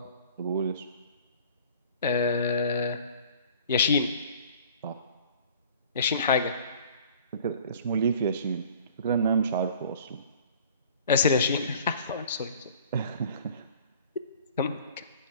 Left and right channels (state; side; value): inverted; both; correlation -0.49